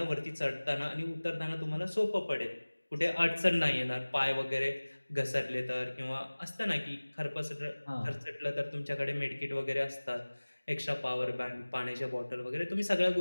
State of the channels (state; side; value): inverted; both; correlation -1.00